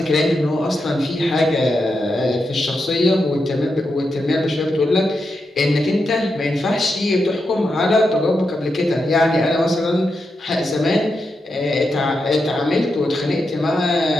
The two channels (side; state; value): both; normal; correlation 0.86